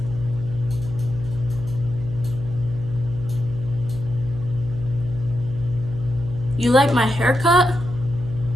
You like my haircut?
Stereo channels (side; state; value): right; noise; hum, 11 dB below the sound